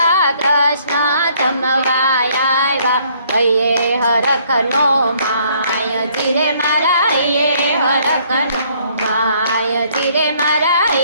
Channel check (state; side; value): inverted; both; correlation -0.64